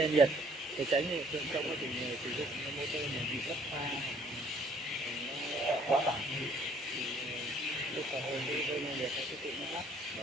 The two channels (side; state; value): both; normal; correlation 0.60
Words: nhiệt để tránh hiện tượng trong quá trình sử dụng motor này bị mất pha quá tải thì lúc cả hơi rơi đen nhiệt nó sẽ tự nó ngắt để